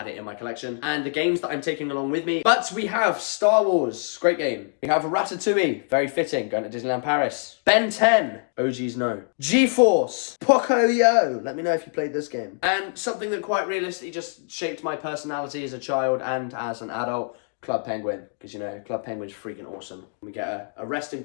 it in my collection. And the games that I'm taking along with me. But we have Star Wars, great game. We have Ratatouille, very fitting, going to Disneyland Paris. Ben 10, OGs know. G-Force, Pocoyo, let me know if you played this game. And something that quite realistically just shaped my personality as a child and as an adult, Club Penguin. Because, you know, Club Penguin's freaking awesome. We get a rest in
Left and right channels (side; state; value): right; silent; 62 dB below the other